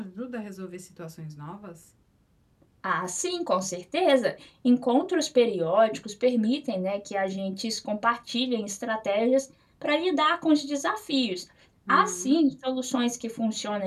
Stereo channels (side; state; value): both; identical; correlation 1.00